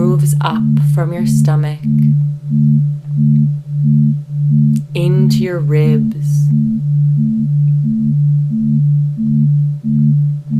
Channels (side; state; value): both; identical; correlation 1.00